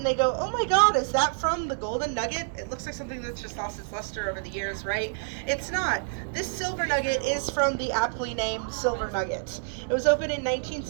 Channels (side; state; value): left; silent; digital silence